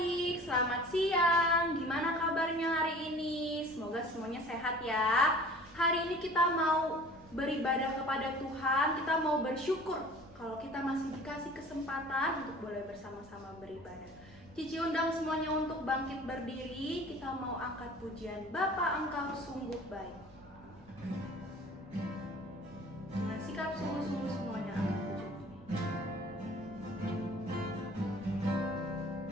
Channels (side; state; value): right; noise; rumble, 24 dB below the sound